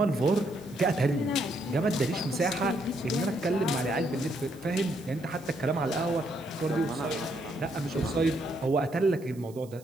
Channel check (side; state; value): right; noise; hiss, 25 dB below the sound